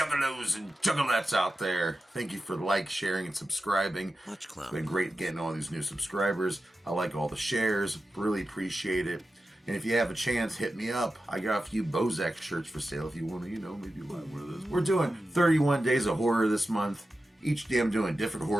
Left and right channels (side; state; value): both; normal; correlation 0.92